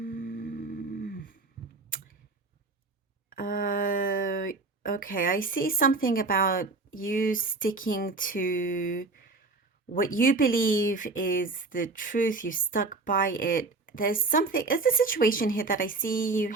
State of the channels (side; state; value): left; quieter; 3.6 dB